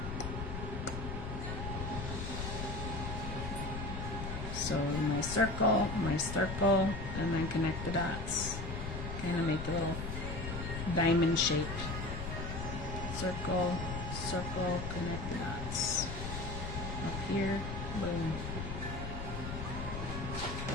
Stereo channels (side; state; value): left; noise; rumble, 5 dB below the sound